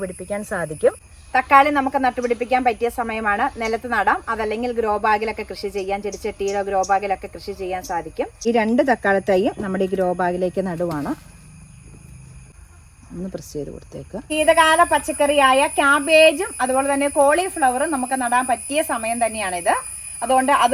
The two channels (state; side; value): identical; both; correlation 1.00